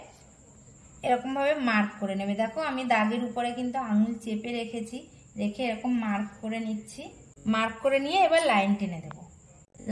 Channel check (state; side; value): identical; both; correlation 1.00